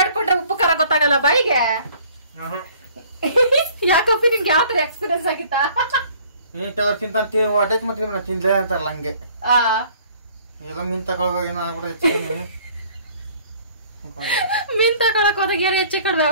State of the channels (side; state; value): both; inverted; correlation -0.56